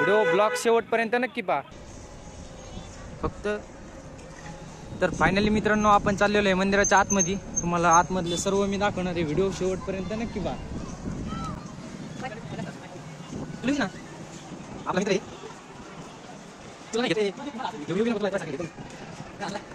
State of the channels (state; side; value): identical; both; correlation 1.00